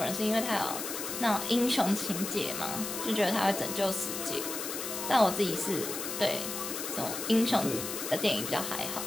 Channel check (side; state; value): left; noise; hiss, 5 dB below the sound